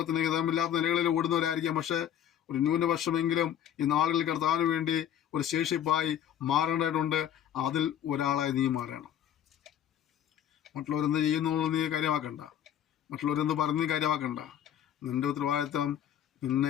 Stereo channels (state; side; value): quieter; right; 10.1 dB